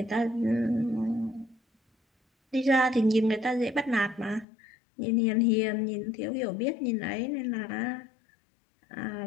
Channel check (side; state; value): right; drops out; at 4.5 s